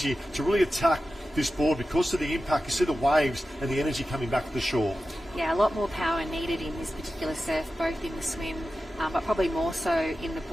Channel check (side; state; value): both; normal; correlation 0.93